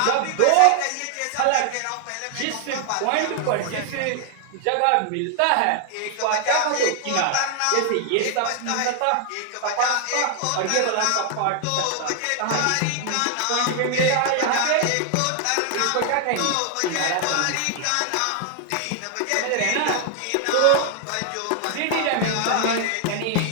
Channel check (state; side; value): different; both; correlation 0.00